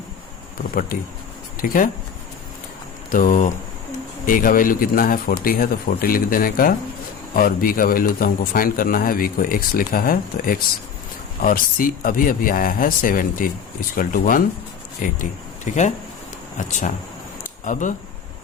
प्रॉपर्टी। ठीक है, तो A का वैल्यू कितना है 40 है तो 40 लिख देने का, और B का वैल्यू तो हमको फाइंड करना है, B को x लिखा है तो x, और C अभी आया है 70 इक्वल टू 180। ठीक है, अच्छा अब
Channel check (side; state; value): right; quieter; 7.0 dB